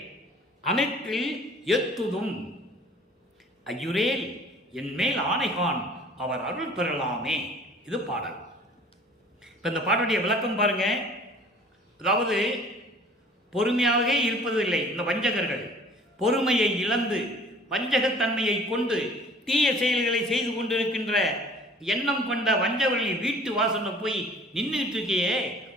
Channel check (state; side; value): normal; both; correlation 0.49